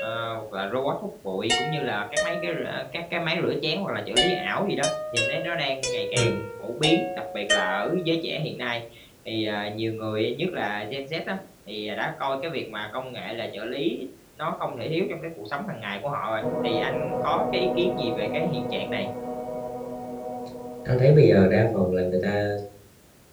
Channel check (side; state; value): both; identical; correlation 1.00